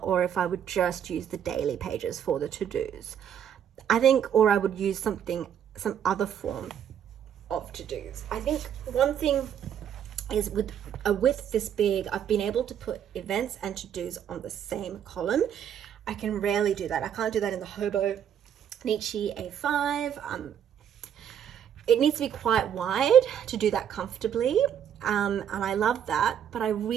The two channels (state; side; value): quieter; left; 9.1 dB